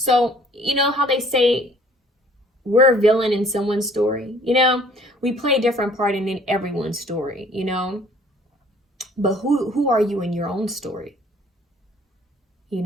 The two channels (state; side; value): normal; both; correlation 0.56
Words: you know how they say we're a villain in someone's story? We play a different part in everyone's story, But who are you in your own story?